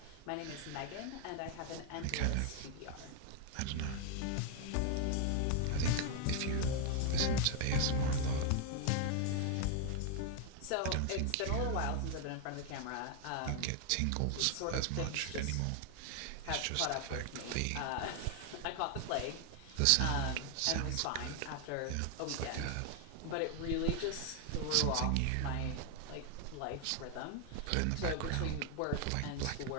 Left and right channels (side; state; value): both; different; correlation 0.00